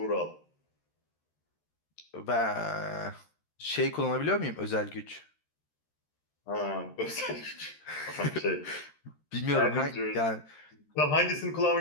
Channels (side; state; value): right; late; 13 ms